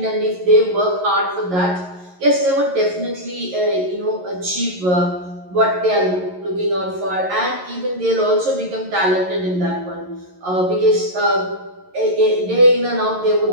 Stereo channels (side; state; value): left; late; 11 ms